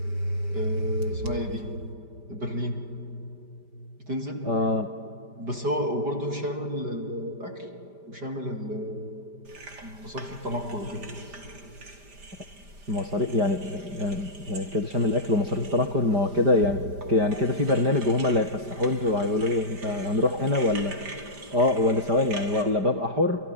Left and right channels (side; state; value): left; late; 5.0 ms